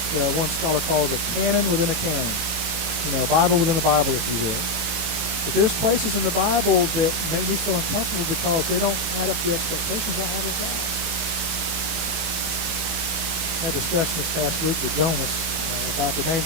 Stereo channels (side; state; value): left; late; 18 ms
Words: one scholar calls a canon within a canon. You know, a Bible within a Bible, if you will. But there's places in the Bible that make me feel uncomfortable because they don't add up to the expectations I have of God. I had a discussion this past week with Jonas about the